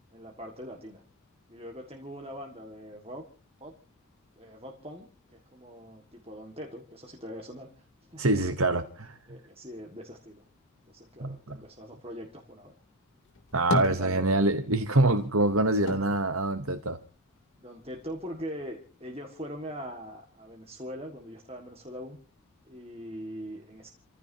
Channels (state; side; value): normal; both; correlation 0.08